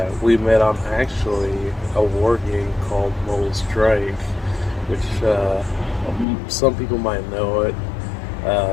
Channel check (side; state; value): right; drops out; at 6.2 s